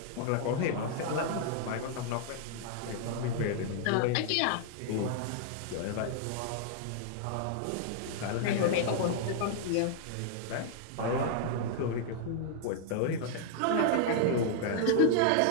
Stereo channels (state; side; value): different; both; correlation -0.01